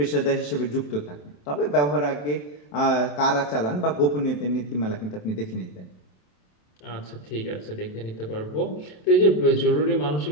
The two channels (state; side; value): late; right; 27 ms